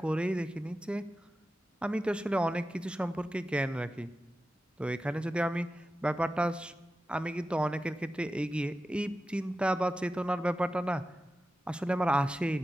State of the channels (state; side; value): normal; both; correlation 0.93